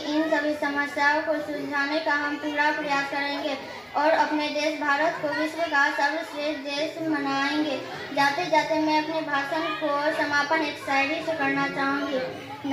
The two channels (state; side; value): identical; both; correlation 1.00